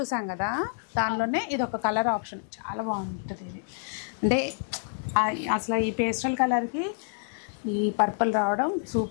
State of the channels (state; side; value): silent; right; digital silence